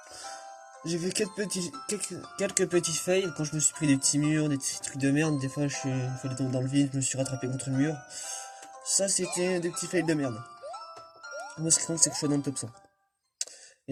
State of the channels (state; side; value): identical; both; correlation 1.00